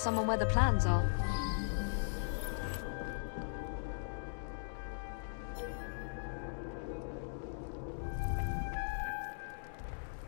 someone where the plans are.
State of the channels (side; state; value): right; silent; digital silence